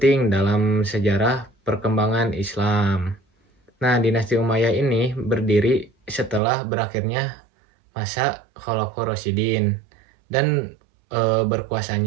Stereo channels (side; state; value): left; drops out; at 6.4 s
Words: dalam sejarah perkembangan Islam. Nah, dinasti Umayyah ini berdiri setelah berakhirnya masa Khulafaur Rasyidin dan